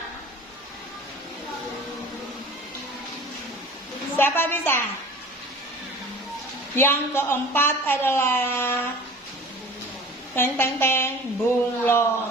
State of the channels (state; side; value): normal; both; correlation 0.42